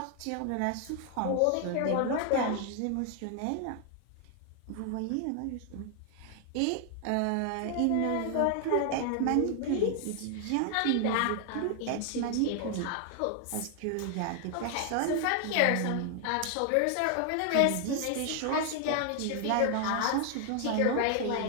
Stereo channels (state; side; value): different; both; correlation 0.00